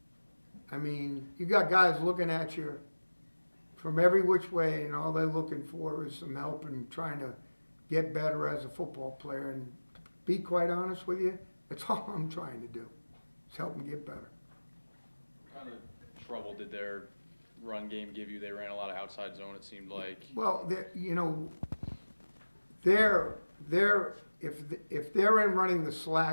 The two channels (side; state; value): both; inverted; correlation -1.00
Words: I mean, you got guys looking at you from every which way, and all they're looking for is some help and trying to get better as a football player. And to be quite honest with you, that's all I'm trying to do, is help them get better. What kind of trouble did their run game give you? They ran a lot of outside zone, it seemed like. Well, you know, if they're in running the